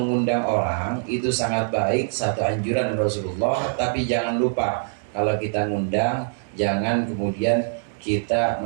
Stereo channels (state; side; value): silent; left; 63 dB below the other